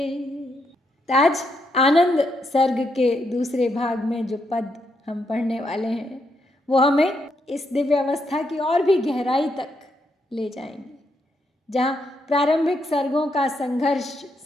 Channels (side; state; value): both; normal; correlation 0.79